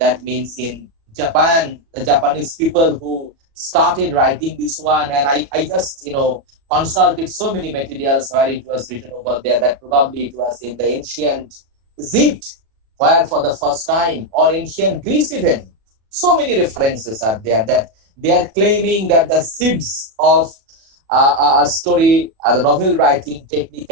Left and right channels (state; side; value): late; left; 36 ms